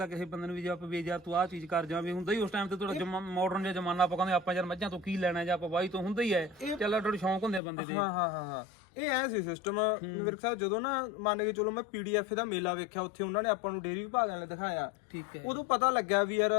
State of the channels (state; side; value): drops out; right; at 7.6 s